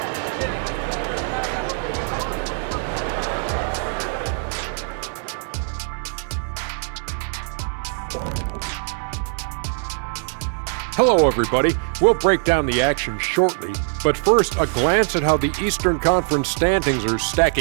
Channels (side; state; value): left; silent; 58 dB below the other